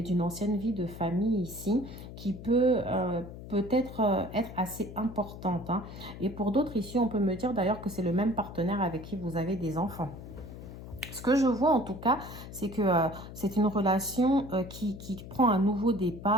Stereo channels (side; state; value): left; noise; hum, 13 dB below the sound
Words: d'une ancienne vie de famille ici qui peut... peut-être être assez importante. Hein. Et pour d'autres ici, on peut me dire d'ailleurs que c'est le même partenaire avec qui vous avez des enfants. Ce que je vois en tout cas, c'est que c'est une relation qui prend un nouveau